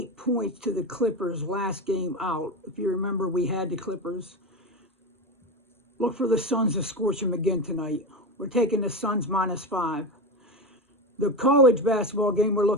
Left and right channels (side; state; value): both; normal; correlation 0.20